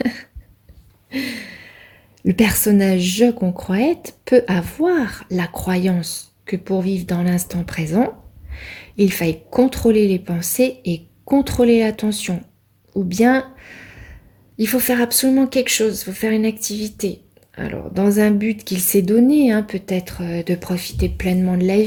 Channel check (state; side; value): identical; both; correlation 1.00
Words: Le personnage je qu'on croit être peut avoir la croyance que pour vivre dans l'instant présent, il faille contrôler les pensées et contrôler l'attention. Ou bien, il faut faire absolument quelque chose, il faut faire une activité. Alors, dans un but qu'il s'est donné, peut-être de profiter pleinement de la